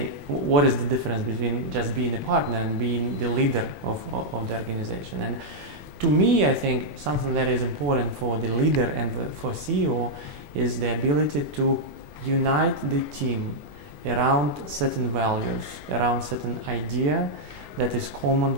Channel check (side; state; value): left; late; 21 ms